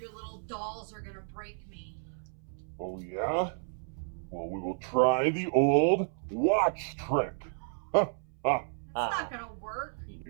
little dolls are going to break me. Oh, yeah? Well, we will try the old watch trick. That's not going to work.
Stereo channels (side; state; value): left; silent; 56 dB below the other